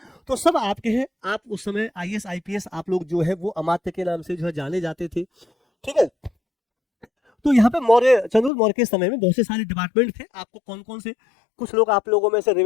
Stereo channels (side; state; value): right; drops out; at 8.5 s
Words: तो सब आपके हैं। आप उस समय आईएएस, आईपीएस आप लोग जो है वो अमात्य के नाम से जो है जाने जाते थे। ठीक है, तो यहाँ पे मौर्य, चंद्रगुप्त मौर्य के समय में बहुत से सारे डिपार्टमेंट थे। आपको कौन कौन से? कुछ लोग आप लोगों में से